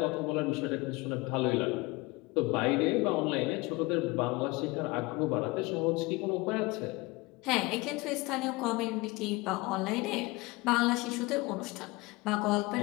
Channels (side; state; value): right; quieter; 23.2 dB